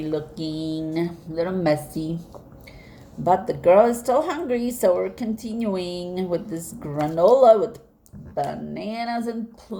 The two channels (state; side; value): identical; both; correlation 1.00